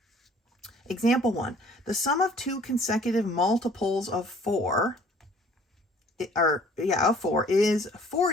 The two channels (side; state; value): both; normal; correlation 0.55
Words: example 1, the sum of 2 consecutive multiples of 4, is